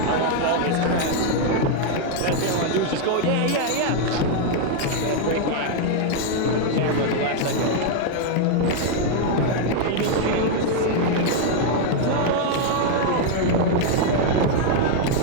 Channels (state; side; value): different; both; correlation 0.00